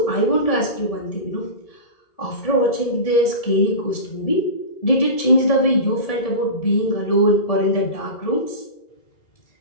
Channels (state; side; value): late; right; 1.7 ms